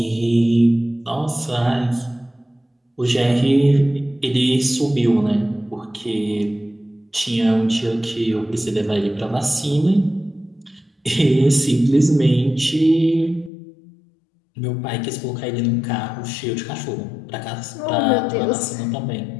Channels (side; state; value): right; drops out; at 13.5 s